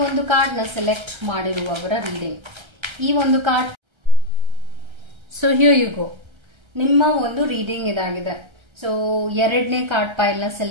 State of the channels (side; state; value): left; late; 1.3 ms